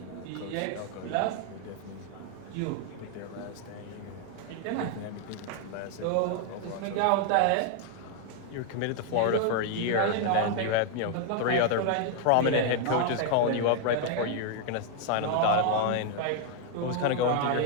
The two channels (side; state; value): both; different; correlation 0.00